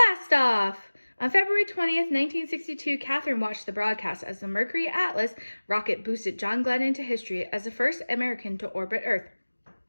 off! On February 20th, 1962, Katherine watched the broadcast as the Mercury Atlas rocket boosted John Glenn into history as the first American to orbit Earth.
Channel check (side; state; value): both; inverted; correlation -1.00